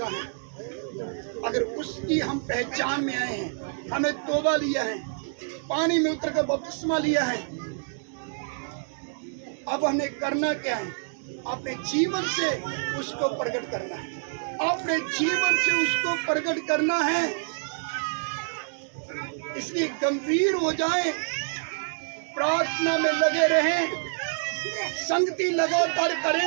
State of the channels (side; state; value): left; silent; digital silence